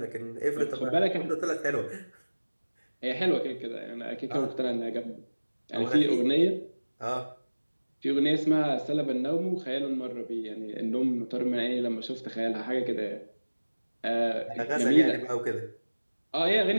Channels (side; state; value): both; inverted; correlation -1.00